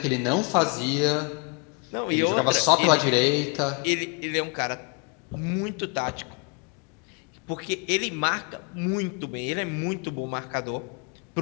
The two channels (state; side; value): quieter; right; 32.9 dB